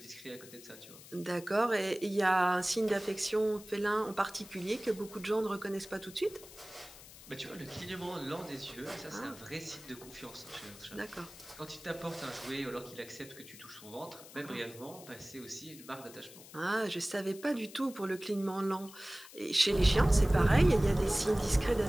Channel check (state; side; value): noise; left; hiss, 18 dB below the sound